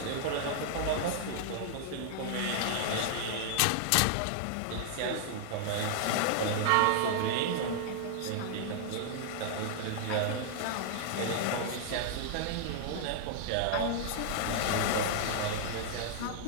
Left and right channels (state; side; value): different; both; correlation -0.01